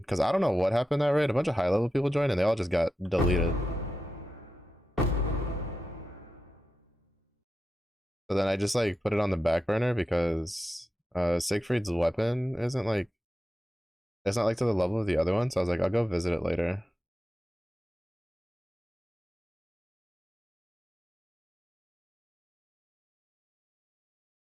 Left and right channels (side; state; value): both; normal; correlation 0.90